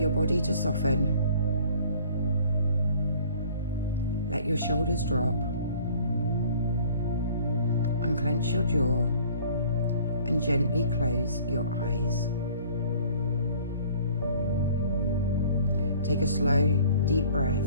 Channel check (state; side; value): inverted; both; correlation -0.52